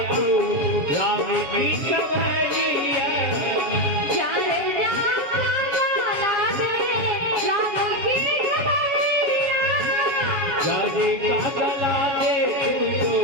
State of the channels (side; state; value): left; late; 7.7 ms